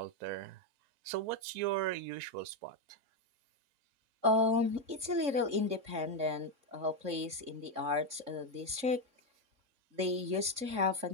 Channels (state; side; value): late; left; 3.6 ms